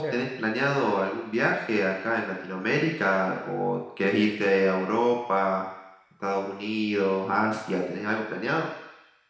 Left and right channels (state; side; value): identical; both; correlation 1.00